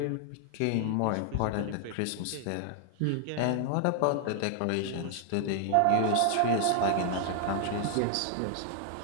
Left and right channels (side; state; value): both; different; correlation 0.00